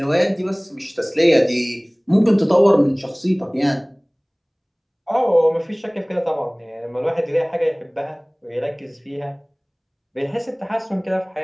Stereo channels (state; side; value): identical; both; correlation 1.00